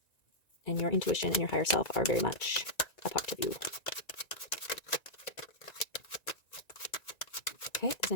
And your intuition and your higher self are very much a part of you. Okay, if there's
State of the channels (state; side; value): late; right; 1.9 ms